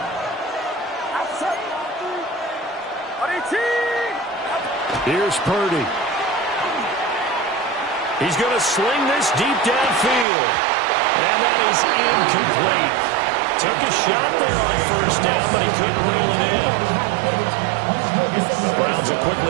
Here's Purdy. He's going to sling this deep downfield. And that is incomplete. Took a shot there on 1st down, but he couldn't reel it in. The Browns will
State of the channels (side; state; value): left; drops out; at 10.2 s